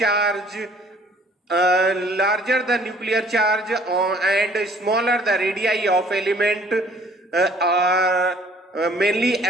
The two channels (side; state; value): both; normal; correlation 0.57